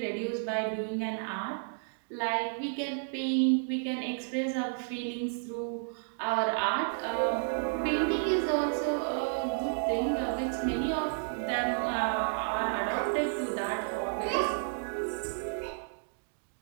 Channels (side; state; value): left; silent; digital silence